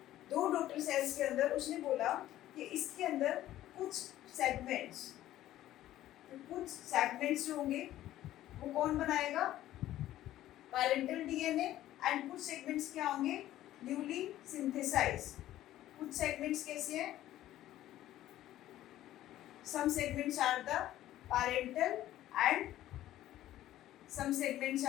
2 daughter cells के अंदर उसने बोला कि इसके अंदर कुछ segments जो होंगे वो कौन बनाएगा, पैरेंटल डीएनए, एंड कुछ सेगमेंट्स क्या होंगे, न्यूली सिंथेसाइज्ड. कुछ सेगमेंट्स कैसे हैं, some segments are the parental and some segments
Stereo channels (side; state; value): right; quieter; 13.8 dB